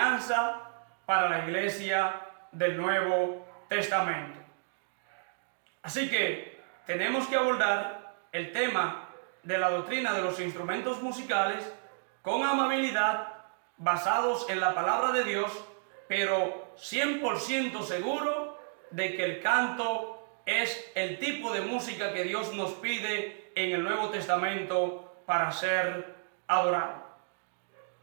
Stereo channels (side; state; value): left; silent; digital silence